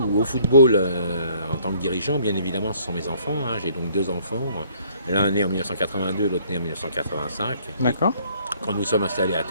au football en tant que dirigeant, bien évidemment, ce sont mes enfants, hein. J'ai donc 2 enfants, l'un né en 1982, l'autre né en 1985. D'accord. Quand nous sommes installés à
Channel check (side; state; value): both; inverted; correlation -0.61